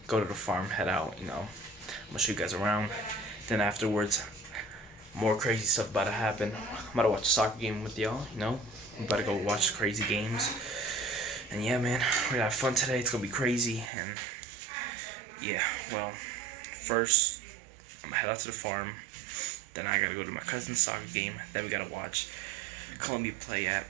go to the farm, head out, you know. I'm gonna show you guys around. Then afterwards, more crazy stuff about to happen. I'm about to watch a soccer game with y'all, you know. I'm about to go watch crazy games. And yeah, man, we're gonna have fun today. It's gonna be crazy. And yeah, well, first I'm gonna head out to the farm. Then I gotta go to my cousin's soccer game. Then we gotta watch Colombia play at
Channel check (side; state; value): left; drops out; at 13.9 s